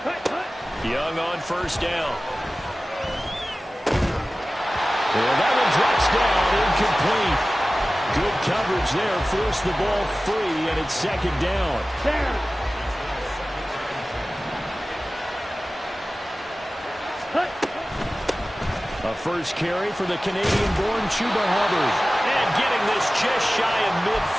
Hut, hut. Young on first down. Well, that one drops down, incomplete. Good coverage there, forced the ball free, and it's second down. Down. Hut. A first carry for the Canadian-born Chuba Hubbard. And getting this just shy of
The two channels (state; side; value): normal; both; correlation 0.97